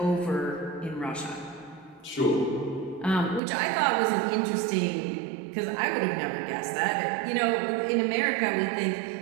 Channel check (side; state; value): left; drops out; at 3.4 s